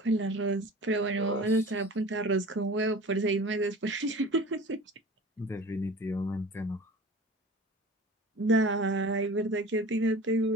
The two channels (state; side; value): normal; both; correlation 0.40